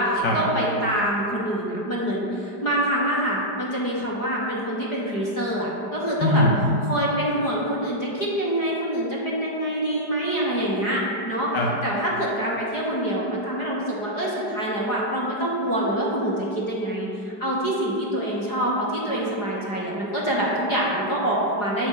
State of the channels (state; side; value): late; right; 4.9 ms